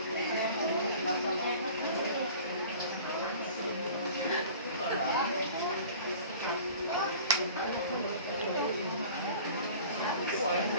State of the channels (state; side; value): inverted; both; correlation -0.44